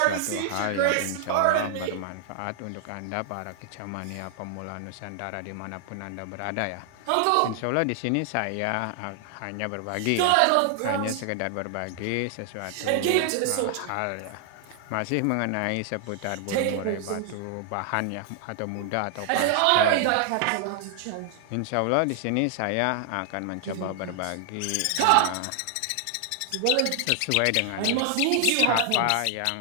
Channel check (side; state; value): both; different; correlation 0.00